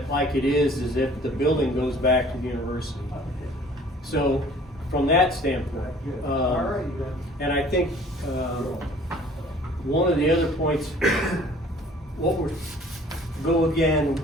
like it is if the building goes back to the university. So from that standpoint, and I think one of the other points, which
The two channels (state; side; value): normal; both; correlation 0.52